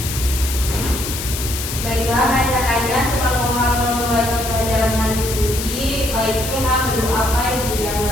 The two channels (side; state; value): left; noise; hiss, 6 dB below the sound